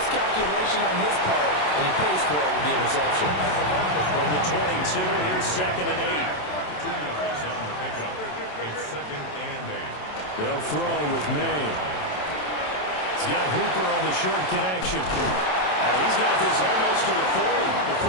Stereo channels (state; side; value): late; right; 27 ms